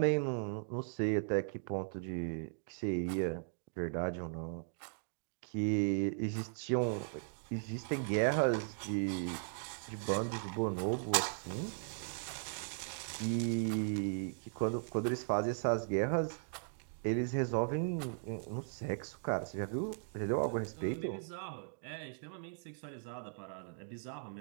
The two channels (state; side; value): silent; left; digital silence